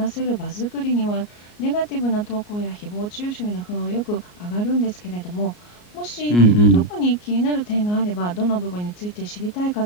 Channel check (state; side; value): late; right; 34 ms